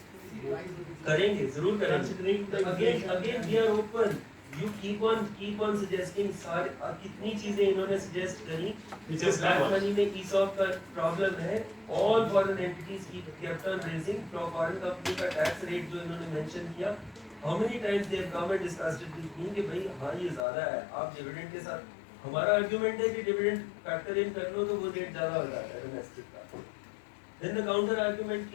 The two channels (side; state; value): right; drops out; at 20.5 s